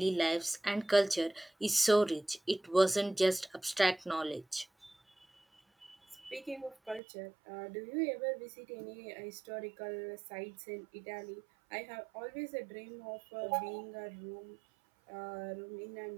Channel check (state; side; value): drops out; left; at 7.0 s